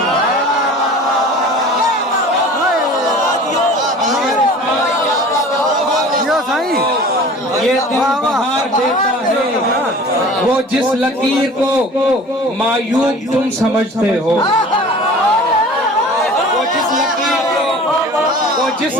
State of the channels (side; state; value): both; normal; correlation 0.43